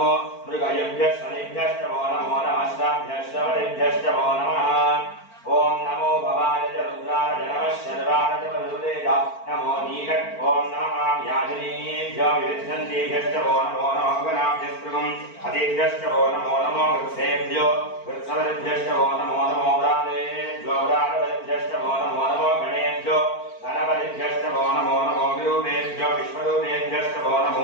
मृगयभ्यश्च वो नमो नमः श्राभ्यश्च वलिभ्यश्च वो नमः ओम नमो भवाय च रुद्राय नमः शर्वाय च वरुदेय नमो नीलक ओम नमः याजनीभ्यो विविद्धन्तेभ्यश्च वो नमो नमः गणाभ्यस्त्रिगं हतेभ्यश्च वो नमो नमो वृक्षेभ्यो वृक्षवलिभ्यश्च वो नमो नमो व्रातेभ्यो व्रातवलिभ्यश्च वो नमो नमो गणेभ्यो गणपतिभ्यश्च वो नमो नमो विरूपेभ्यो विश्वरूपेभ्यश्च वो नमो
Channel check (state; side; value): late; right; 4.4 ms